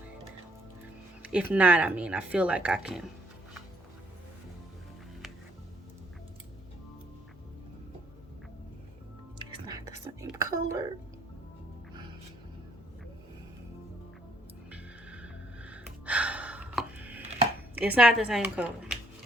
If not, I mean, I feel like I can. It's not the same color. It's not the same color.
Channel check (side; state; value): both; normal; correlation 0.67